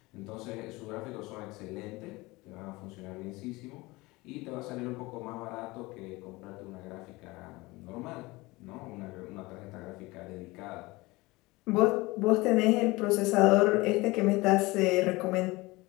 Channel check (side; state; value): right; quieter; 22.1 dB